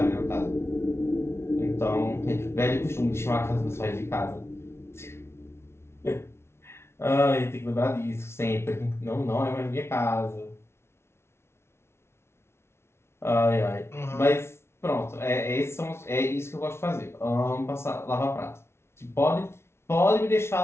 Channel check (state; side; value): late; right; 0.12 ms